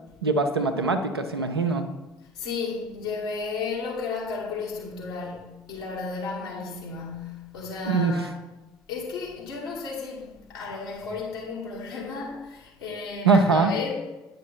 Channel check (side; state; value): both; normal; correlation 0.36